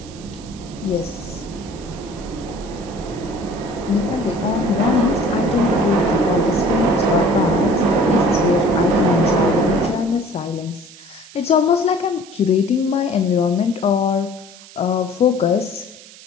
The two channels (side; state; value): right; noise; hiss, 20 dB below the sound